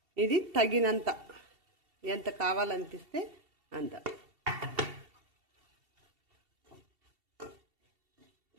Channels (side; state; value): left; late; 2.7 ms